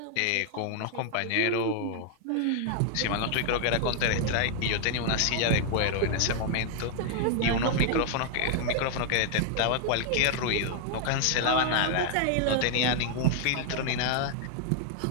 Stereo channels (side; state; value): both; different; correlation 0.00